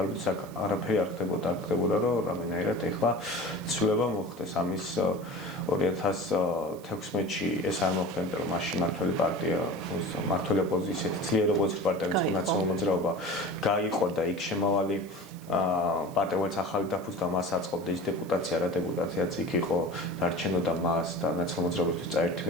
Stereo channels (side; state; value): right; noise; hiss, 23 dB below the sound